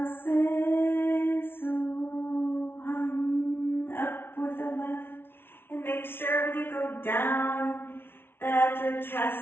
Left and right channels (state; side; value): late; right; 0.11 ms